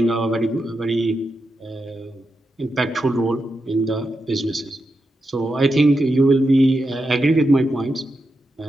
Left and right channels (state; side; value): normal; both; correlation 0.87